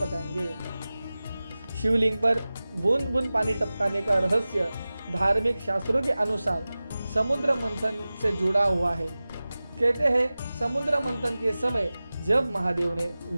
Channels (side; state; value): both; inverted; correlation -0.97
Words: शिवलिंग पर बूंद बूंद पानी टपकाने का रहस्य धार्मिक शास्त्रों के अनुसार समुद्र मंथन से जुड़ा हुआ है। कहते हैं समुद्र मंथन के समय जब महादेव ने